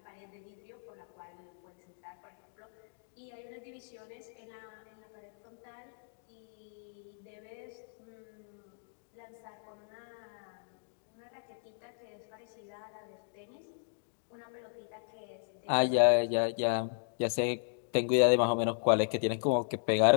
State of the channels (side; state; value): right; silent; digital silence